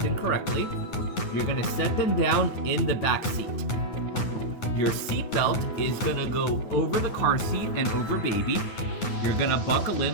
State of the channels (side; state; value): right; late; 9.4 ms